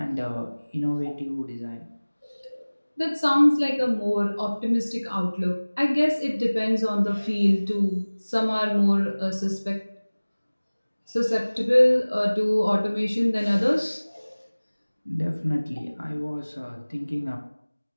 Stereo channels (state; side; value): inverted; both; correlation -1.00